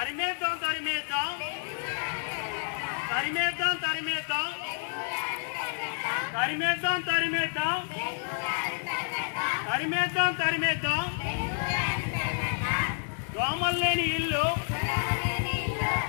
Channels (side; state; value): right; silent; digital silence